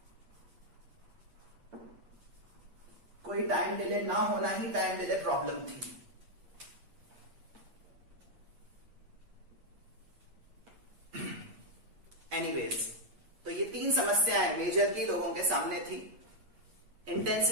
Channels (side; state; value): left; late; 8.5 ms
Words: कोई टाइम डिले ना होना ही टाइम डिले प्रॉब्लम थी. एनीवेज, तो ये 3 समस्याएं मेजरली लोगों के सामने थी.